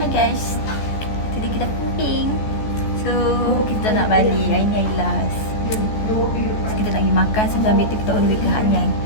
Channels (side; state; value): right; late; 14 ms